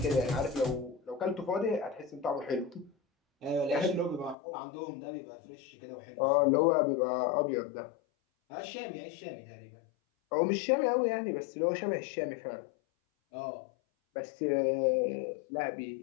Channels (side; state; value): right; drops out; at 4.4 s